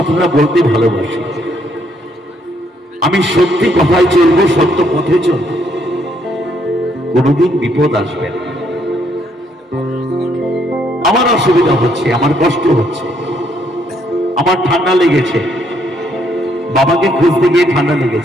বলতে ভালোবাসি, আমি সত্যি কথায় চলবো, সত্য পথে চলবো, কোনোদিন বিপদ আসবে না। আমার অসুবিধা হচ্ছে, আমার কষ্ট হচ্ছে, আমার ঠান্ডা লেগেছে, বাবাকে খুঁজতে গিয়ে ঠান্ডা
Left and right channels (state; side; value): normal; both; correlation 0.71